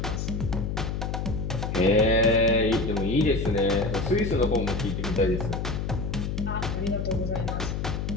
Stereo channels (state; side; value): noise; left; hum, 2 dB below the sound